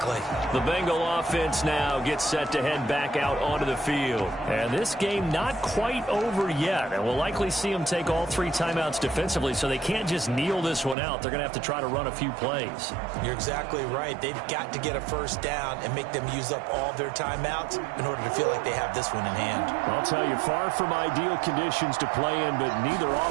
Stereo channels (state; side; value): drops out; left; at 11.0 s